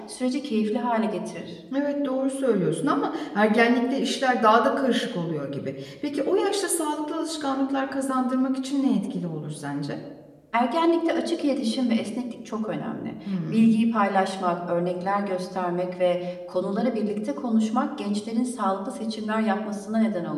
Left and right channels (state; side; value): identical; both; correlation 1.00